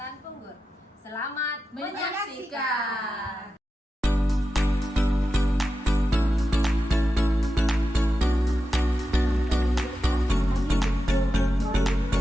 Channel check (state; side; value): normal; both; correlation 0.91